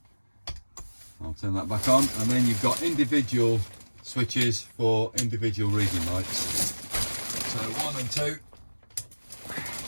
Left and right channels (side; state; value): both; inverted; correlation -1.00